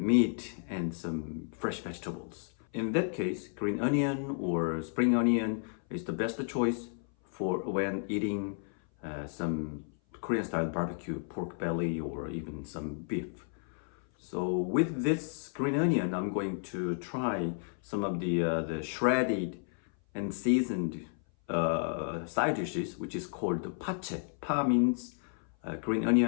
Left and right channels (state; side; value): silent; right; 56 dB below the other